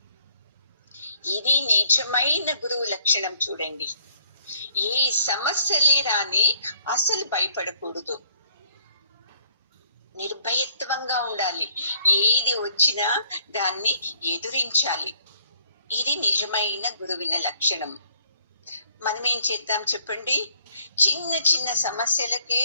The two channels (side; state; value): both; inverted; correlation -0.64